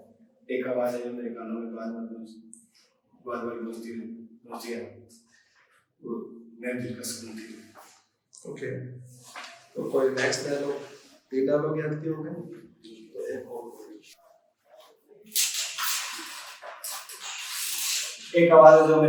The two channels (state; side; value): identical; both; correlation 1.00